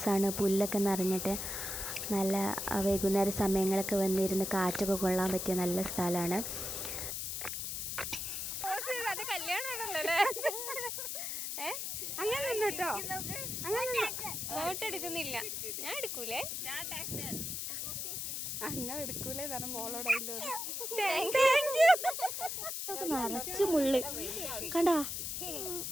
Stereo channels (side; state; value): left; noise; hiss, 3 dB below the sound